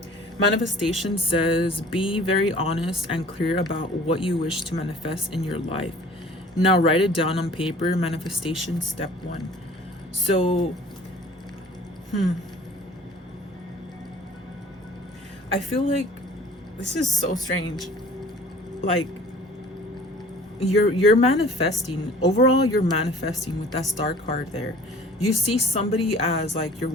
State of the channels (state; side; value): normal; both; correlation 0.48